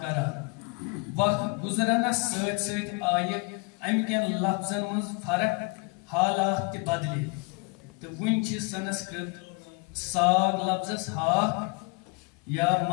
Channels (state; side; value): quieter; right; 29.8 dB